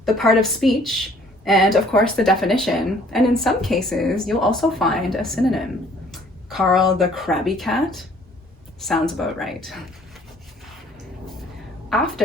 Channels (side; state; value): both; normal; correlation 0.57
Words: the part of speech, and of course the definition. And in some cases, you'll also find a synonym. Carl the Crabby Cat sounds about right.